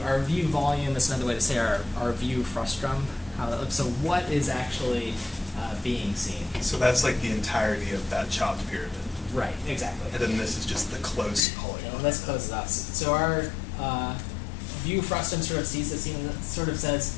view volume is another way to say our view frustum. How that looks. So what is actually being seen? So that's like the entirety of that chopped pyramid. Right. Exactly. And then this is just the close polygon. And this closes us. So our view frustum sort of sees the scene and sort of says,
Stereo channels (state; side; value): drops out; right; at 11.4 s